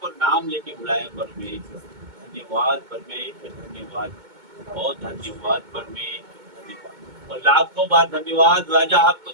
को नाम लेके बुलाया परमेश्वर। धन्यवाद परमेश्वर, धन्यवाद, बहुत धन्यवाद परमेश्वर, धन्यवाद और लाखों बार धन्यवाद राजा, आपको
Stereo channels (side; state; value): left; late; 2.2 ms